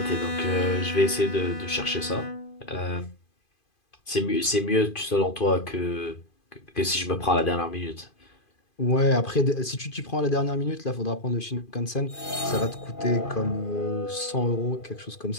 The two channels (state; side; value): late; right; 2.5 ms